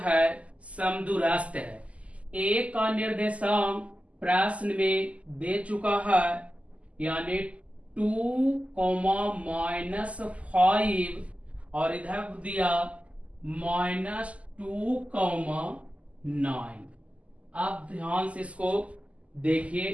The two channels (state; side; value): late; left; 0.066 ms